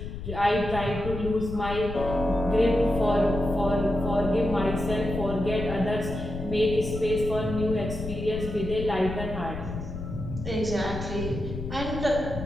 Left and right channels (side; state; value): left; noise; rumble, 8 dB below the sound